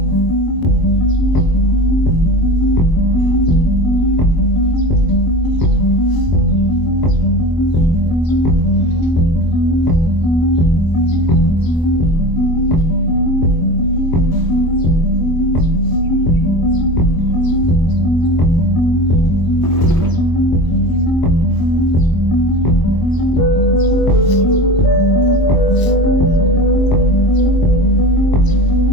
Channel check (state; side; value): late; right; 1.0 ms